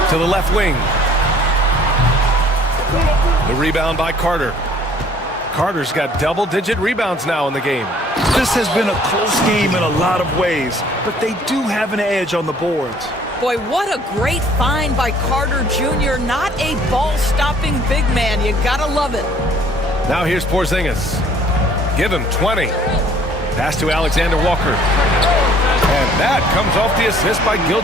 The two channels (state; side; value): normal; both; correlation 0.57